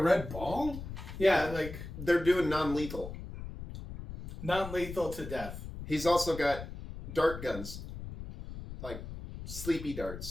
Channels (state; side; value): noise; left; rumble, 10 dB below the sound